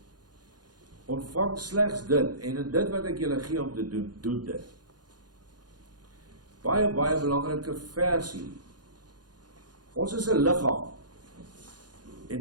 Ontvang slegs dit, en in dit wat ek julle gee om te doen, doen dit. Baie belangrike versie. Ons is 'n liggaam.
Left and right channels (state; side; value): late; left; 0.69 ms